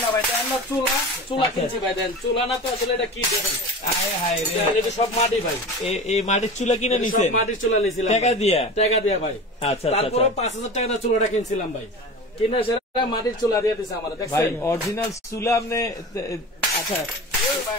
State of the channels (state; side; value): normal; both; correlation 0.33